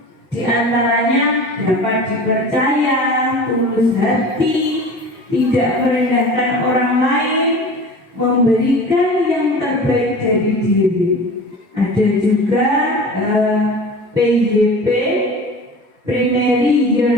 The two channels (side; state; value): both; normal; correlation 0.37